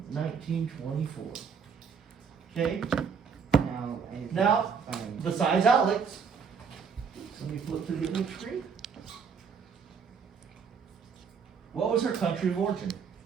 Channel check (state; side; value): quieter; left; 6.2 dB